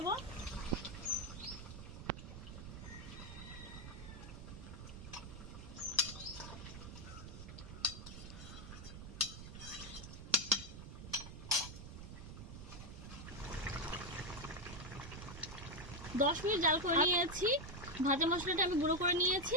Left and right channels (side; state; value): right; noise; rumble, 11 dB below the sound